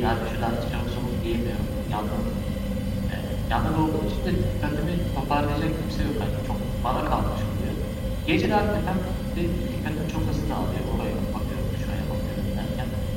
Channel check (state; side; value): identical; both; correlation 1.00